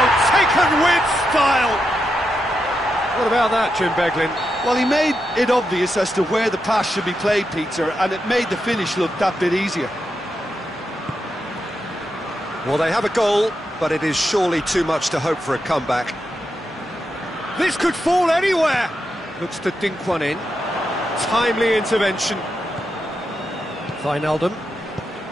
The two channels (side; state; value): both; normal; correlation 0.85